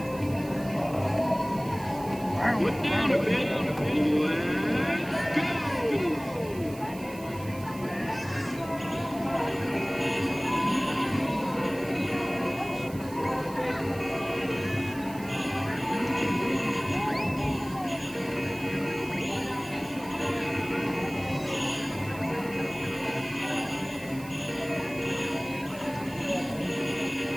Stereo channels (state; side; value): noise; right; hiss, 19 dB below the sound